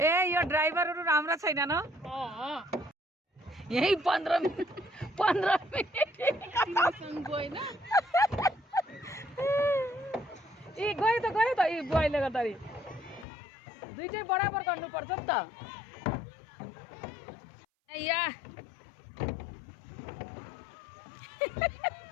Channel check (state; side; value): drops out; right; at 13.2 s